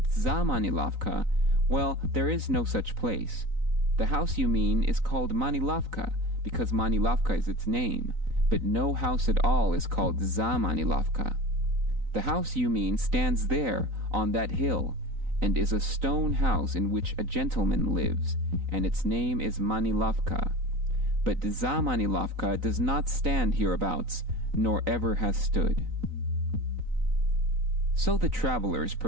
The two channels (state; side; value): late; left; 3.9 ms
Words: za Manilovka, well, there is no such place. The house you mean is called Manilovka, because Manilovka is its name, but no house at all is called za Manilovka. The house you mean stands there, on that hill, and is a stone house in which a gentleman lives, and its name is Manilovka. But za Manilovka does not stand hereabouts, nor ever has stood. So the travelers